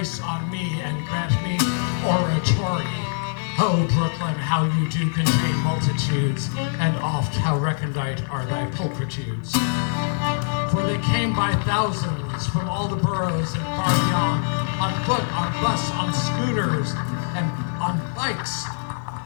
on me and grant me oratory. Oh, Brooklyn, how you do contain multitudes, and oft how recondite are thy pulchritudes. For they came by thousands from all the boroughs and far beyond, on foot, on bus, on scooters, and on bikes,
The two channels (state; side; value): silent; right; digital silence